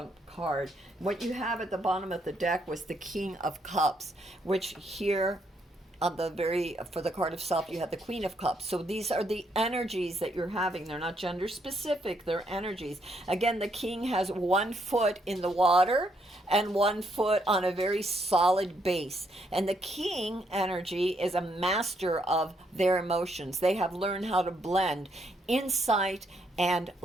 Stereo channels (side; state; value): both; normal; correlation 0.74